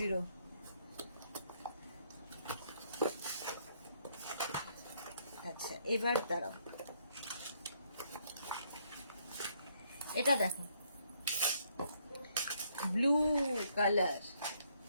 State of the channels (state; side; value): inverted; both; correlation -0.71